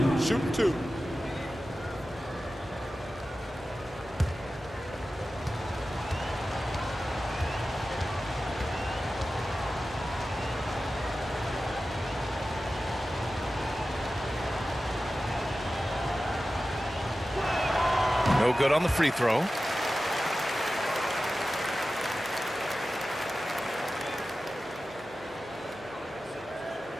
Shoot 2. No good on the free throw.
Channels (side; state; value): both; normal; correlation 0.94